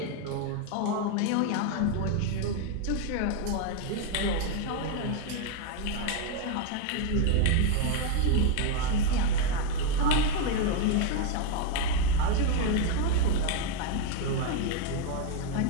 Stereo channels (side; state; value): both; different; correlation 0.01